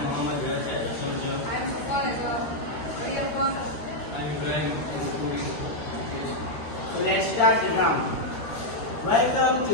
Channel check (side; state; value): right; late; 13 ms